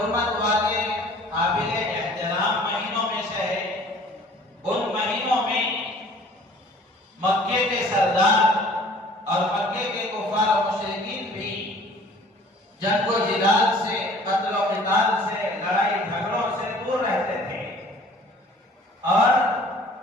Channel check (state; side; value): normal; both; correlation 0.51